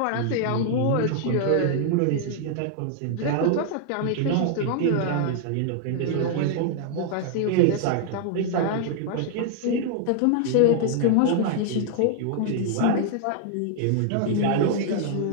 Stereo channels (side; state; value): both; different; correlation 0.00